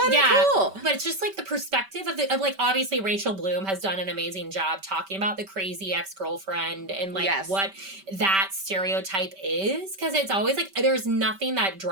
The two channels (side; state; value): left; late; 5.2 ms